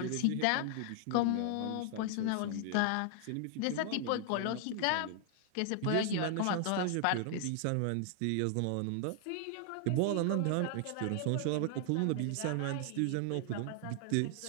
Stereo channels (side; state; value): both; different; correlation 0.00